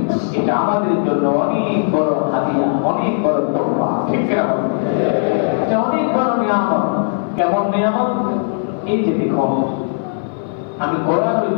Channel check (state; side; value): silent; right; 58 dB below the other